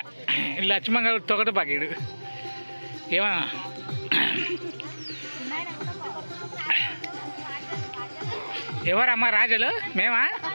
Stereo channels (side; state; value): both; inverted; correlation -1.00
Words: లక్ష్మణ్ గారు తొగట పాకీడు ఏమన్నా ఎవరమ్మా రాజులు మేమా